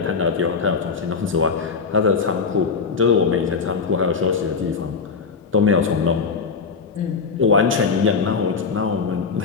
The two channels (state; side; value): quieter; right; 5.1 dB